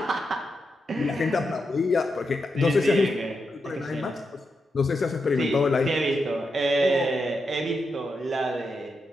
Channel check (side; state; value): both; normal; correlation 0.85